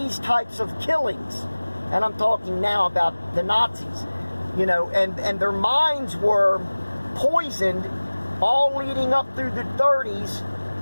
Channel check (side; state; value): both; inverted; correlation -1.00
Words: types of killings. And I'm talking now about the Nazis, and their minds were poisoned all leading up through the 30s